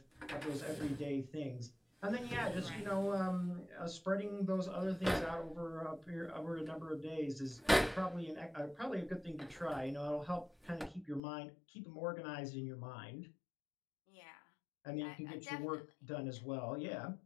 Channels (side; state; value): right; drops out; at 11.2 s